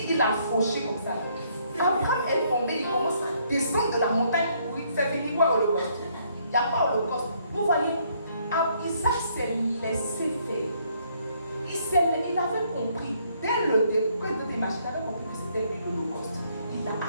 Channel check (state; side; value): inverted; both; correlation -0.68